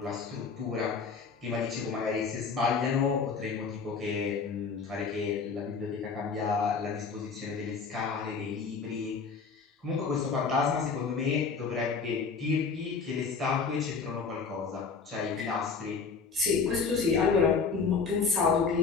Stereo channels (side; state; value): right; quieter; 5.2 dB